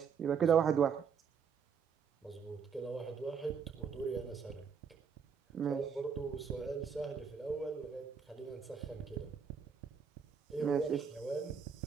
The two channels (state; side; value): quieter; left; 6.6 dB